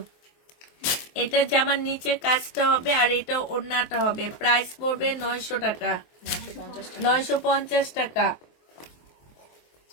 এটা জামার নিচে কাজটা হবে আর এটা ওড়নাটা হবে। প্রাইস পড়বে 900 টাকা। 950 টাকা।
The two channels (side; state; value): right; late; 24 ms